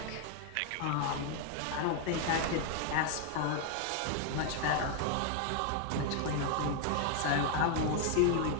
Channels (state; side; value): different; both; correlation 0.00